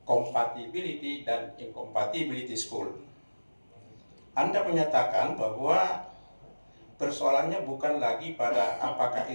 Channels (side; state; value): both; inverted; correlation -1.00